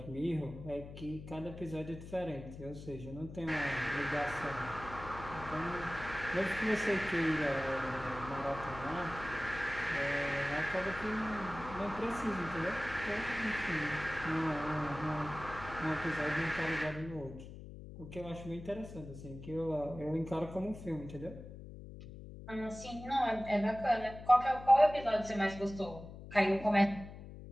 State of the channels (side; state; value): left; noise; hum, 13 dB below the sound